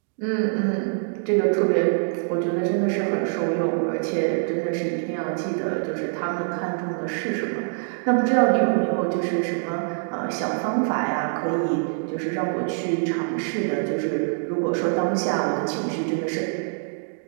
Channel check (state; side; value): silent; left; digital silence